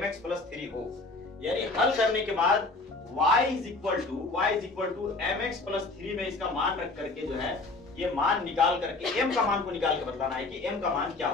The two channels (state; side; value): quieter; right; 3.4 dB